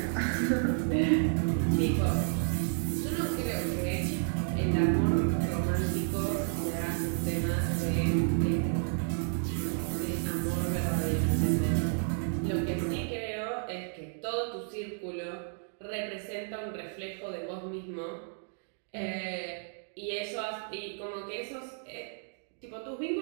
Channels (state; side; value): silent; left; 57 dB below the other